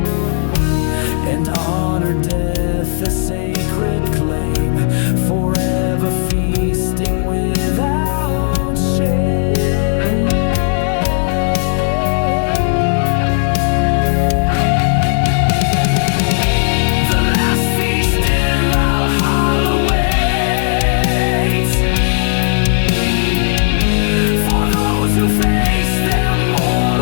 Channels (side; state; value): right; silent; digital silence